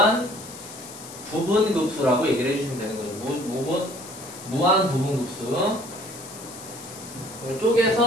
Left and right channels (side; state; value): left; noise; hiss, 14 dB below the sound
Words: 부분급수라고 얘기를 해주시면 되는 거죠. 무한 부분급수.